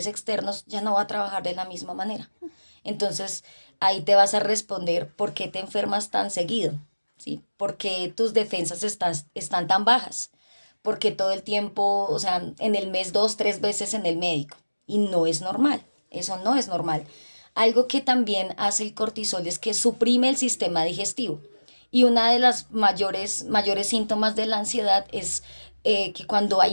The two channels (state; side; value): inverted; both; correlation -1.00